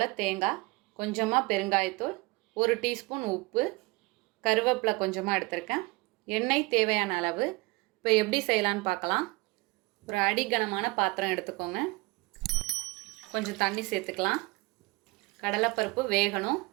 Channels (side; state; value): left; quieter; 24.7 dB